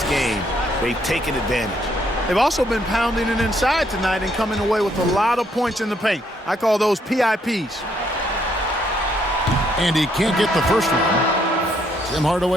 game, they've taken advantage. They've also been pounding it inside tonight and coming away with a lot of points in the paint. I call those PIPs. And he can't get the first one. Tim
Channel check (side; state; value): both; normal; correlation 0.71